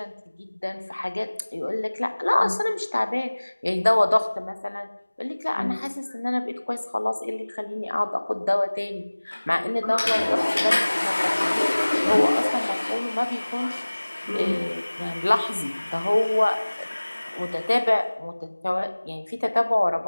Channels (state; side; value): inverted; both; correlation -1.00